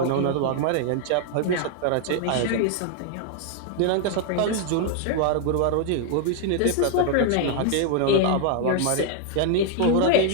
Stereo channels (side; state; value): both; different; correlation 0.00